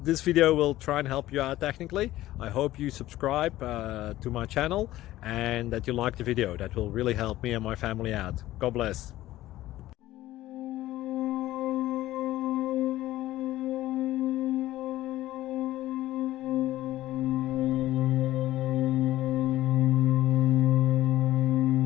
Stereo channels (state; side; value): quieter; right; 15.4 dB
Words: this video will try and help you out technically. I hope you subscribe to my channel and that you like the video. That will really help me and my family out. God bless.